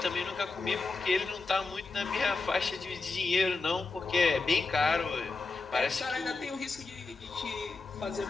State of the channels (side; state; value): right; quieter; 3.8 dB